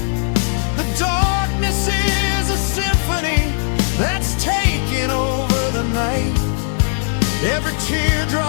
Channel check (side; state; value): right; silent; 58 dB below the other